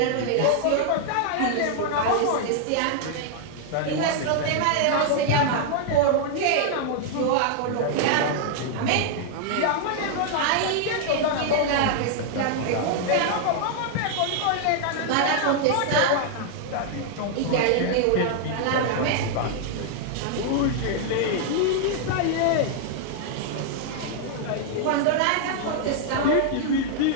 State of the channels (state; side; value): different; both; correlation 0.00